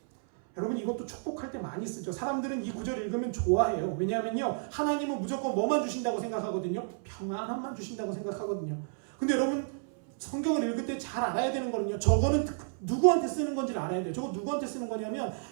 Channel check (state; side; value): silent; left; 57 dB below the other